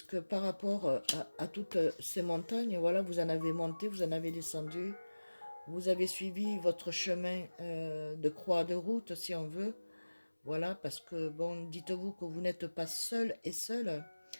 par rapport à toutes ces montagnes, voilà, vous en avez monté, vous en avez descendu, vous avez suivi votre chemin de croix de route, si on veut. Voilà, parce que, bon, dites-vous que vous n'êtes pas seul et seul,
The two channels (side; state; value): both; inverted; correlation -1.00